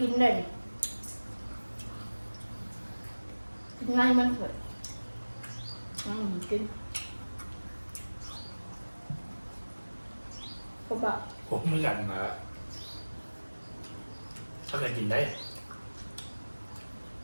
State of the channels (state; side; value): inverted; both; correlation -1.00